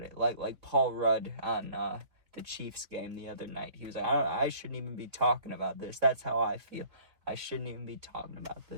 it. Like Paul Rudd on the Chiefs game the other night. He was like, I shouldn't even be talking about this. That's how I feel. I shouldn't even be talking about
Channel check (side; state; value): left; late; 3.4 ms